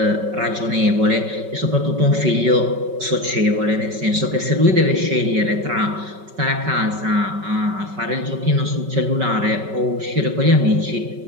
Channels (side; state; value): left; late; 5.3 ms